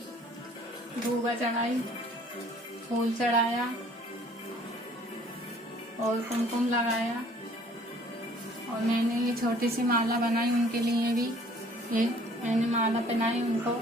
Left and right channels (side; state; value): both; normal; correlation 0.55